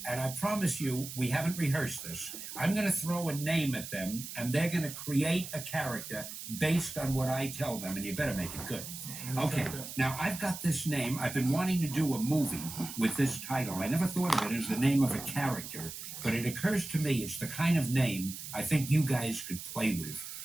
and I promise you, we haven't rehearsed this, I'm going to throw a name at them, and they're going to create a character based on what I tell them, and you better make it good. Okay, now I've got this name. I've been wanting to do a movie with this title. I never thought of it as the name of a character, but it occurs to me it's the kind of name I think you guys could play with.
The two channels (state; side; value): noise; right; hiss, 9 dB below the sound